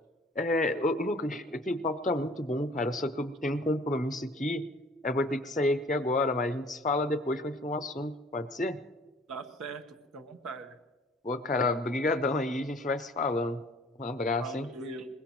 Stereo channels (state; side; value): normal; both; correlation 0.53